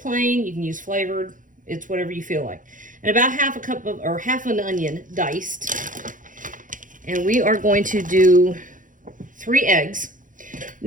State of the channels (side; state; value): left; late; 0.38 ms